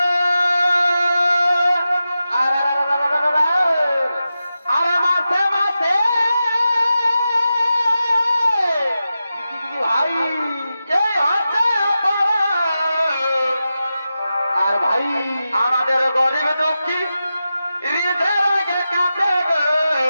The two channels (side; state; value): both; inverted; correlation -0.91